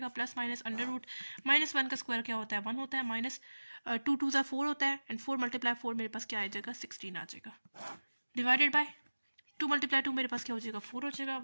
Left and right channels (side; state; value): both; inverted; correlation -1.00